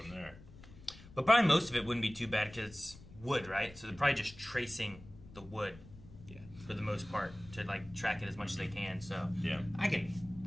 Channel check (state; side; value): noise; left; rumble, 19 dB below the sound